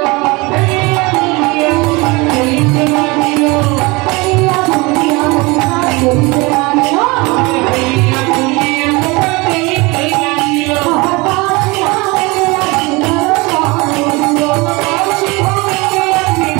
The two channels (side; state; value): left; quieter; 25.0 dB